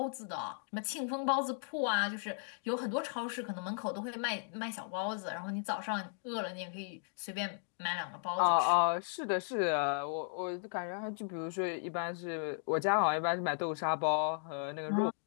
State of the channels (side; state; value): right; silent; digital silence